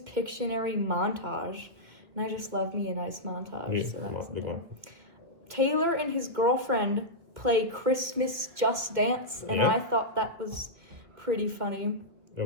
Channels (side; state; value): left; late; 2.0 ms